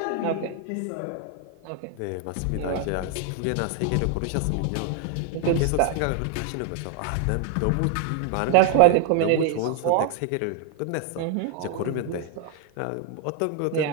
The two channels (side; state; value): both; different; correlation 0.00